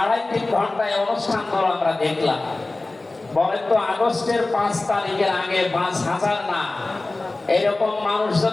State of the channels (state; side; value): quieter; right; 3.1 dB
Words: ঘন্টায় অনুষ্ঠানগুলো আমরা দেখলাম। বলেন তো, আগস্টের 5 তারিখের আগে 5000 না, এরকম মানুষ